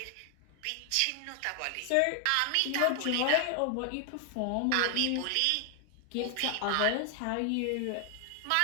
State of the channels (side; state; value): both; different; correlation 0.00